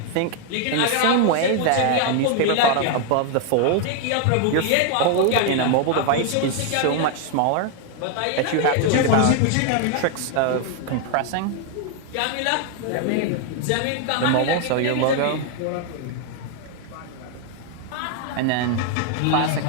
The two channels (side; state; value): both; different; correlation 0.00